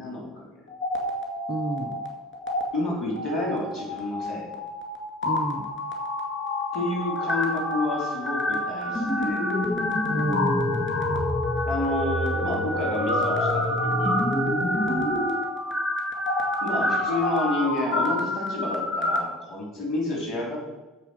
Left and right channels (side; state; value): both; normal; correlation 0.45